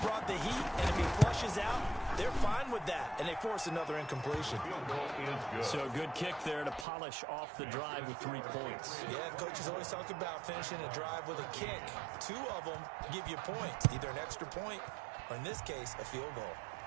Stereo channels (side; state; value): left; drops out; at 6.9 s